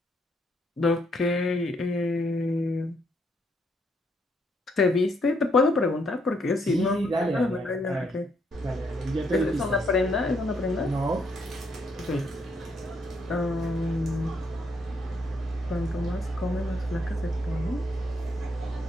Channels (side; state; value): both; normal; correlation 0.73